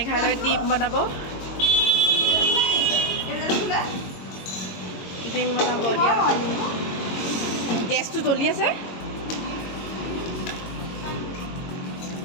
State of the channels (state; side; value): late; right; 22 ms